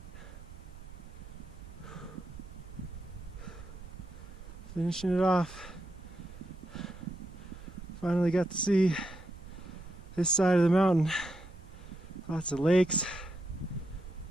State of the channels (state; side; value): noise; right; rumble, 15 dB below the sound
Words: Finishing it off. Finally got to see this side of the mountain. Lots of lakes.